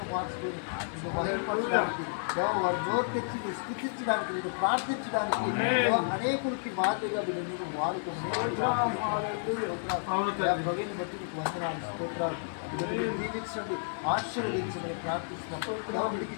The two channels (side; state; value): right; silent; digital silence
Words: మార్చుకొని మహిమపరచడానికి వారి నోరు తెచ్చి స్థుతించడానికి నేను ప్రార్థించడానికి అనేకులకి మాదిరిగా నేను వాడుకోమని బట్టి మీకు వందనాలు స్తోత్రాలు దీవించండి ఆశీర్వదించమని ప్రార్థిస్తున్నాను. వీడికి